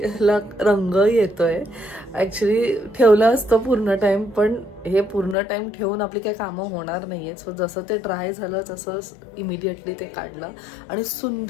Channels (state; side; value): drops out; right; at 5.4 s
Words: रंग येतोय. ॲक्च्युली ठेवलं असतं पूर्ण टाइम, पण हे पूर्ण टाइम ठेवून आपली काही कामं होणार नाहीये. सो जसं ते ड्राय झालं तसं इमिडिएटली ते काढलं आणि